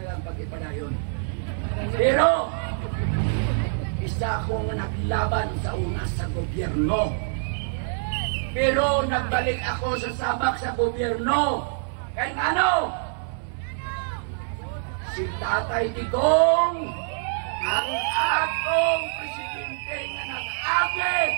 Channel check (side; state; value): left; silent; digital silence